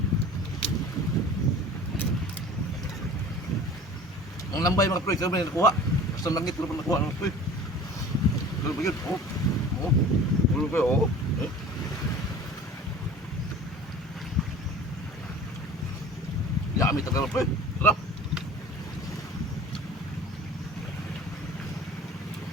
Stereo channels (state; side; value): normal; both; correlation 0.41